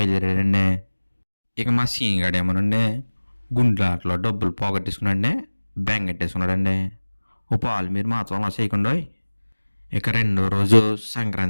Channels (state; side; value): inverted; both; correlation -1.00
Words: ఇక మా సీనిగాడేమోనండి గుండ్లాట్లో డబ్బులు పోగొట్టేసుకున్నాడండి, బెంగెట్టేసుకున్నాడండి. ఓ పాలు మీరు మాత్రం అలా చేయకుండా. ఇక రెండో రోజు